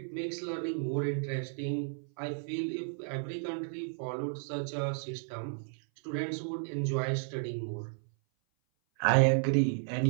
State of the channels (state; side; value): silent; left; 56 dB below the other